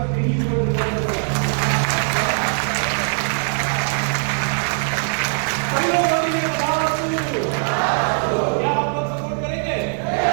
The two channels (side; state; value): left; silent; digital silence